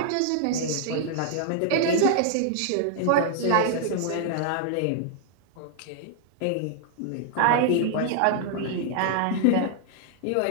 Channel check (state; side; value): different; both; correlation -0.01